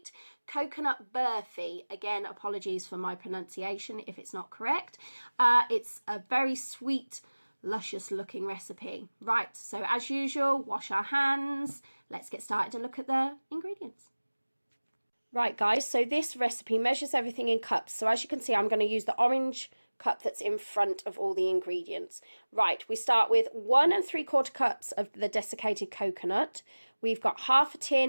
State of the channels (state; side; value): inverted; both; correlation -1.00